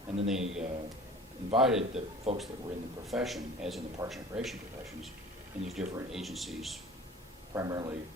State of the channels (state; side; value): normal; both; correlation 0.43